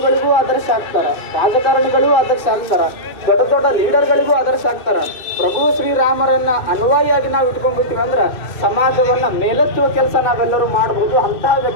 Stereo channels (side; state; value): right; late; 2.6 ms